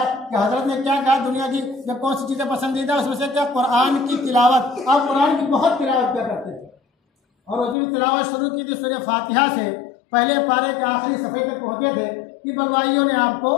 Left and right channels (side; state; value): right; drops out; at 7.8 s